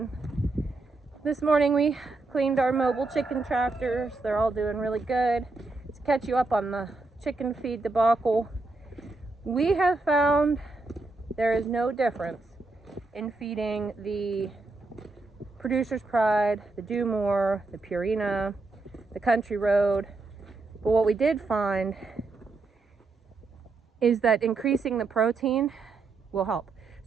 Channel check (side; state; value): left; quieter; 3.5 dB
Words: This morning we cleaned our mobile chicken tractors. They're all doing really good. To catch you up on the chicken feed debacle, we have found there is no difference in feeding the Producer's Pride, the Do More, the Purina, the Country Road. But what we did find is that increasing the protein will help.